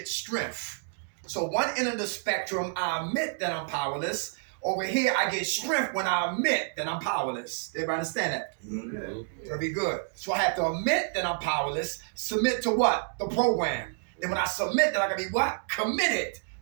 strength? So one end of the spectrum, I admit that I'm powerless. Over here, I get strength when I admit that I'm powerless. Everybody understand that? Mm-hmm. Very good. So I have to admit that I'm powerless, submit to what? The program. Then when I submit, then I can be what? Committed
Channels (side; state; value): left; silent; digital silence